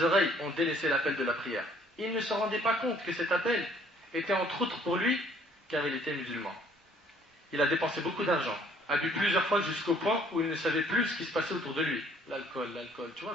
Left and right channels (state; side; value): normal; both; correlation 0.60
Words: oreilles ont délaissé l'appel de la prière. Il ne se rendait pas compte que cet appel était entre autres pour lui, car il était musulman. Il a dépensé beaucoup d'argent, a bu plusieurs fois jusqu'au point où il ne savait plus ce qui se passait autour de lui. L'alcool. Tu